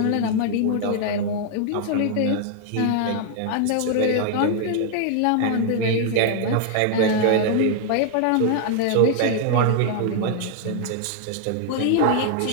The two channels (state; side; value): different; both; correlation 0.00